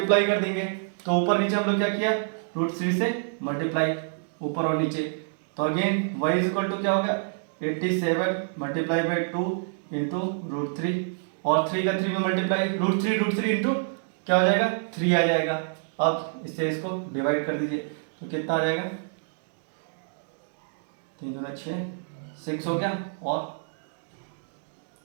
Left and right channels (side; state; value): left; silent; digital silence